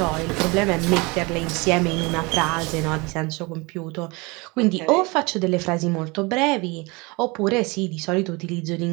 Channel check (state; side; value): quieter; left; 26.3 dB